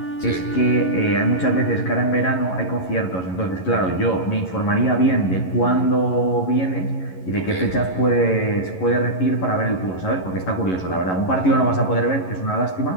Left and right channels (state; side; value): late; right; 11 ms